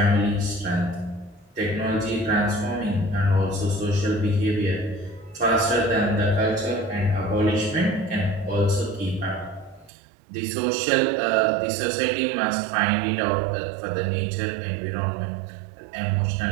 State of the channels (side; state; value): left; drops out; at 9.9 s